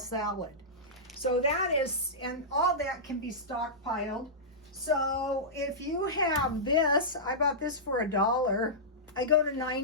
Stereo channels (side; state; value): both; normal; correlation -0.15